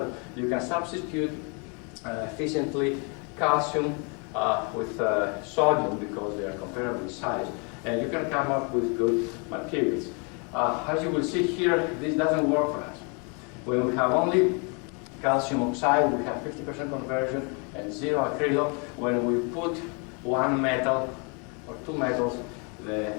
you can substitute efficiently calcium with sodium because they are comparable in size, and you can come up with good materials. As you will see here, this doesn't work for us. When we have only calcium oxide, we have 50% conversion and 0 acrylo. When we put one metal or two metals, the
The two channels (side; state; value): right; quieter; 34.9 dB